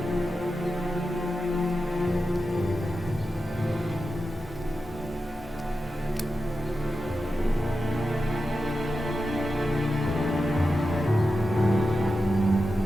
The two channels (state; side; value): normal; both; correlation 0.91